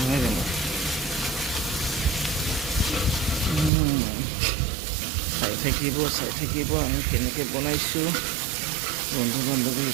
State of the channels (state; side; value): drops out; left; at 3.7 s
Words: নহয় জানো? চাই থাকিব আমি কেনেকৈ বনাইছোঁ, বন্ধু